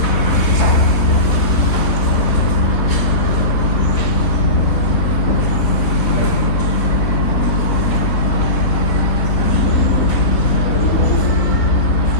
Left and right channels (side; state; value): right; late; 3.9 ms